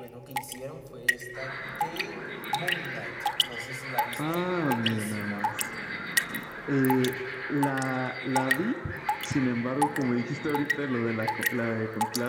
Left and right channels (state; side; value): identical; both; correlation 1.00